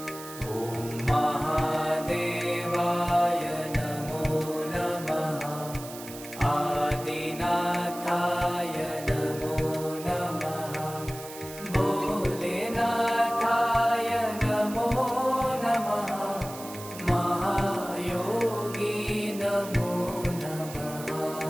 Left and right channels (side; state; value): right; noise; hiss, 14 dB below the sound